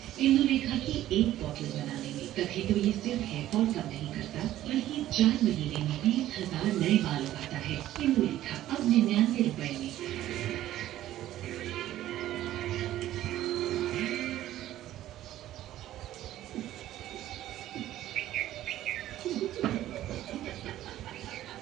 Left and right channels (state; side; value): quieter; left; 13.6 dB